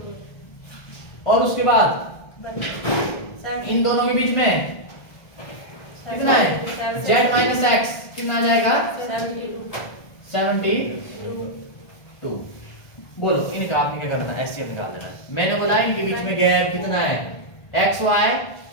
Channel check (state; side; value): late; right; 1.5 ms